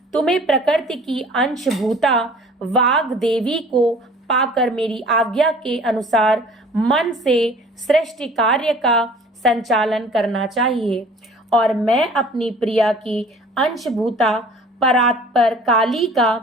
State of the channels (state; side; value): normal; both; correlation 0.49